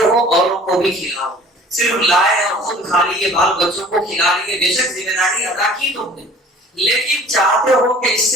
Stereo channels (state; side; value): normal; both; correlation 0.49